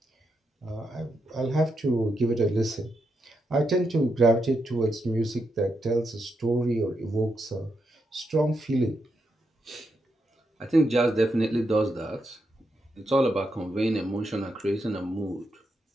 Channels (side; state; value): both; normal; correlation 0.83